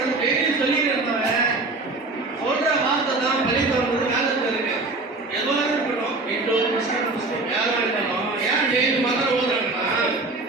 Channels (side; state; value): left; quieter; 3.4 dB